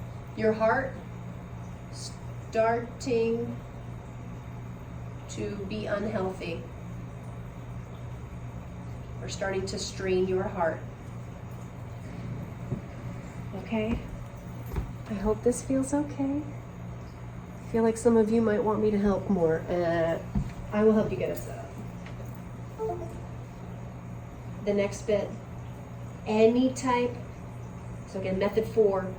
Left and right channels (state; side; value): identical; both; correlation 1.00